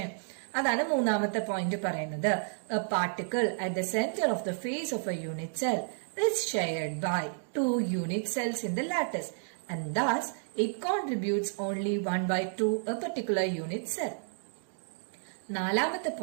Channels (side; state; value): left; silent; digital silence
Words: അതാണ് മൂന്നാമത്തെ പോയിന്റ് പറയുന്നത്. A particle at the centre of the face of a unit cell is shared by 2 unit cells in the lattice and thus it contributes only 1/2 a particular unit cell. നാലാമത്തെ